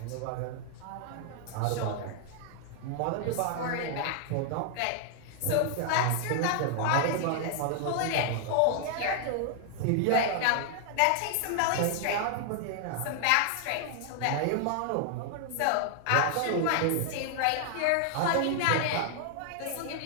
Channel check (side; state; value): both; different; correlation 0.00